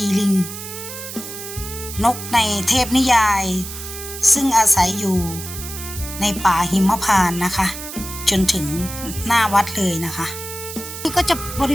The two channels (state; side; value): noise; right; hiss, 10 dB below the sound